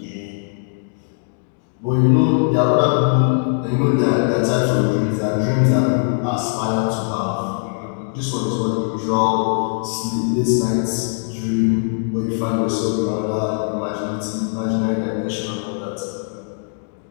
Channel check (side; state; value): right; silent; digital silence